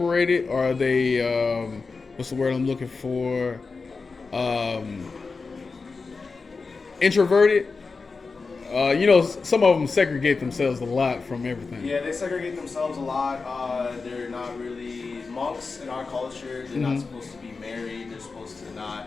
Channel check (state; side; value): quieter; right; 4.4 dB